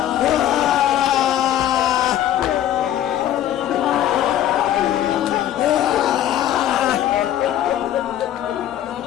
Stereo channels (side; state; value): right; quieter; 11.7 dB